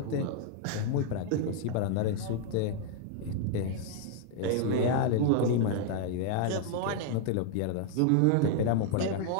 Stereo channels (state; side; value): different; both; correlation 0.00